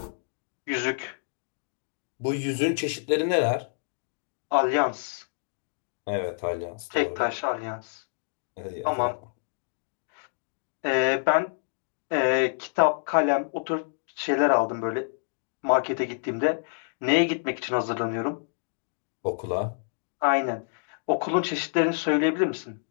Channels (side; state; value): right; silent; digital silence